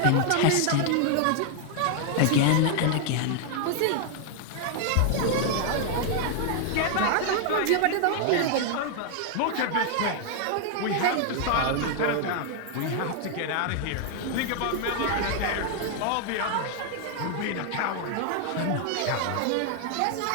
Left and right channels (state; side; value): different; both; correlation 0.00